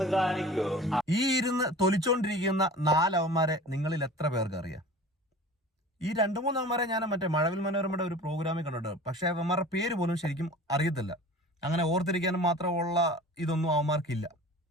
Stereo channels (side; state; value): both; normal; correlation 0.40